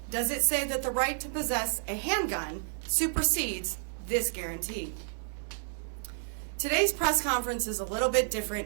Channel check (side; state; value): left; silent; digital silence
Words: does it say that the right to possess a handgun supersedes this guarantee. Today's press conference is a little bit